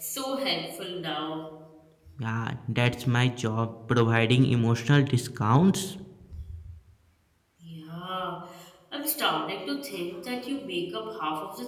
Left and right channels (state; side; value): identical; both; correlation 1.00